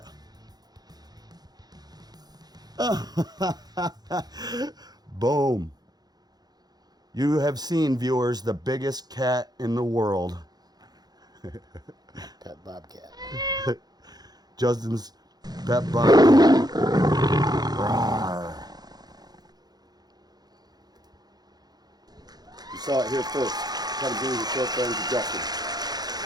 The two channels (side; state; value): left; late; 0.19 ms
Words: that. Boom. You have seen, viewers, the biggest cat in the world. Pet bobcat. Justin's pet bobcat. Rawr. You saw it here first. Come bring the short friends to Justin.